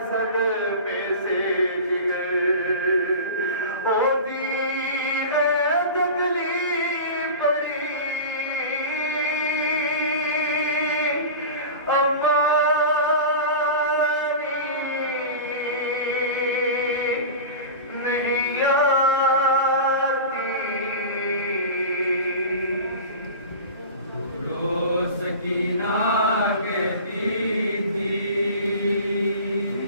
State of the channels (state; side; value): inverted; both; correlation -0.32